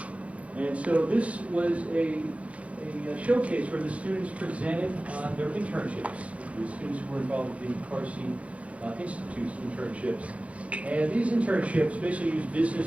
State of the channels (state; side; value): late; left; 0.064 ms